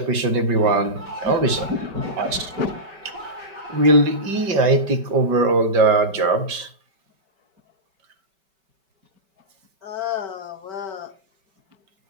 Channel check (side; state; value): left; late; 5.2 ms